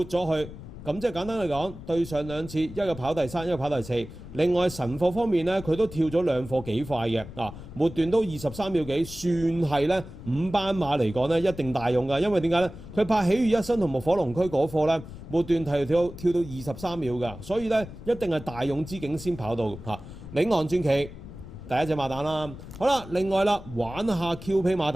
咗佢。咁即係簡單嚟講，對上2次，一個跑第3，一個跑第4。另外神貨方面咧，佢都跳咗2課幾快嘅，末段都23秒幾，算係咧5班馬嚟講咧一定大用㗎。因為點解咧？佢拍喜悅一生同埋火龍區嗰課咧，末段跳到23秒㗎，所以咧一定係大勇之境先跑到領航傳奇第一隻馬膽啦。好啦，另外啦，玩下 QP 馬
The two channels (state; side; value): noise; left; rumble, 14 dB below the sound